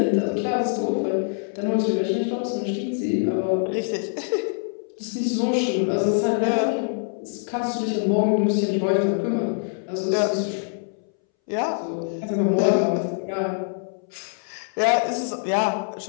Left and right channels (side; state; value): right; silent; 61 dB below the other